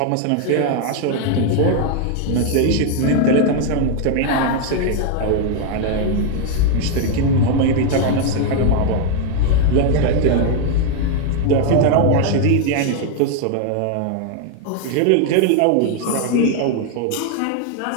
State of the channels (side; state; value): both; different; correlation 0.01